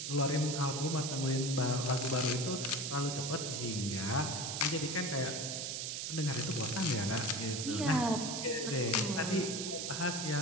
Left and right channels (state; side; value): noise; right; hiss, 3 dB below the sound